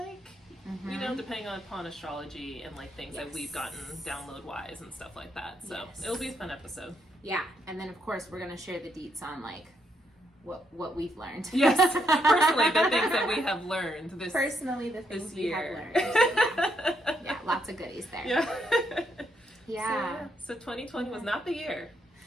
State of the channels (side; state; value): both; normal; correlation 0.76